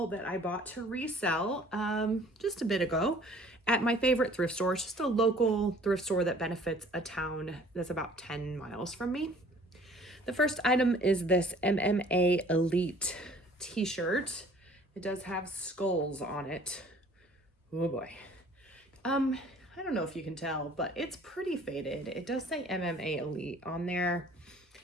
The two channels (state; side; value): normal; both; correlation 0.53